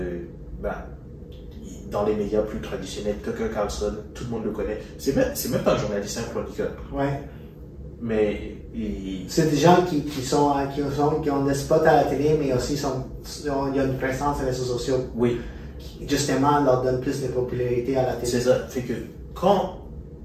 Dans les médias plus traditionnels, Tucker Carlson, tout le monde le connaît. C'est même pas un journaliste, un chroniqueur. Ouais. Mais c'est des gens qui ont des spots à la télé, mais aussi il y a une présence sur les réseaux sociaux. Oui. Qui, justement, leur donne plus de popularité à la télé. C'est ça. Fait que quand,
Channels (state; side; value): identical; both; correlation 1.00